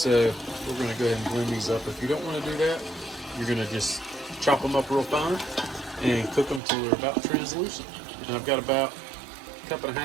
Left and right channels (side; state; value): left; drops out; at 6.6 s